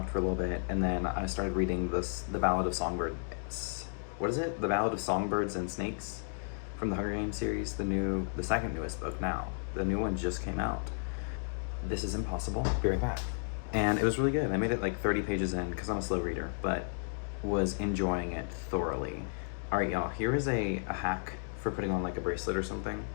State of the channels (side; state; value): right; silent; digital silence